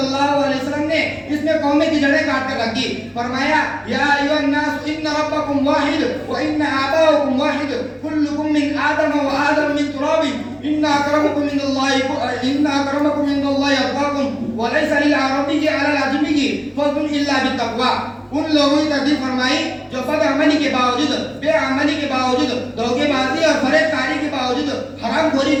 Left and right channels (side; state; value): both; identical; correlation 1.00